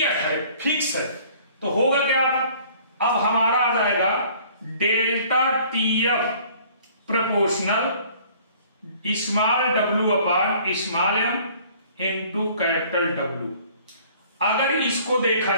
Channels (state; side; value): inverted; both; correlation -0.54